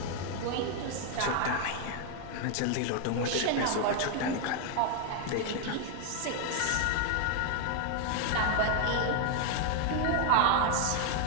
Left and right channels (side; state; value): both; different; correlation 0.00